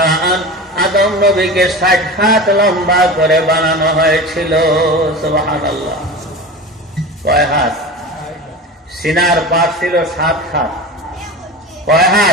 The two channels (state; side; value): normal; both; correlation 0.30